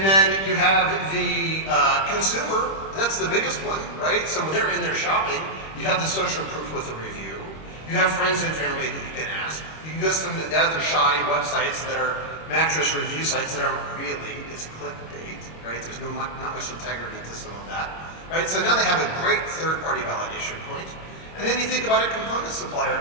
then you have the consumer, that's the biggest one, right? So when they're in there shopping, you have the social proof with a review. You have friends and family that you can ask. You can go to some of the other shoddy websites that are mattress review sites that aren't really, it's clickbait, right? There's not much integrity to some of that, right? So now they have a great third-party validation point. And then you think about a component supplier,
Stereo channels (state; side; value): late; right; 26 ms